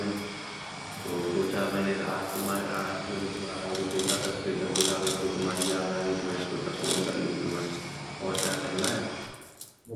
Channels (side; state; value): both; identical; correlation 1.00